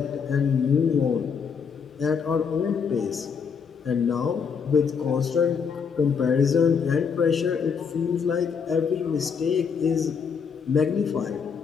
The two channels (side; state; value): right; quieter; 6.3 dB